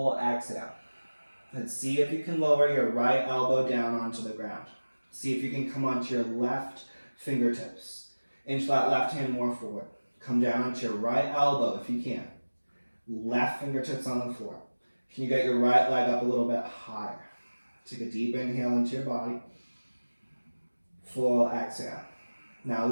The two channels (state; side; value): inverted; both; correlation -1.00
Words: exhale. And see if you can lower your right elbow down onto the ground. See if you can come onto your left fingertips. Inch that left hand more forward. Come down onto your right elbow if you can. Left fingertips on the floor. Can you get your right leg up a little bit higher? Take a deep inhale into your body. Full exhale. Now